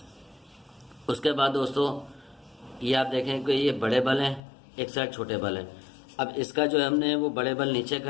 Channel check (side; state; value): right; drops out; at 4.4 s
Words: उसके बाद दोस्तों ये आप देखें कि ये बड़े बल हैं, एक साइड छोटे बल हैं। अब इसका जो हमने वो बड़े बल नीचे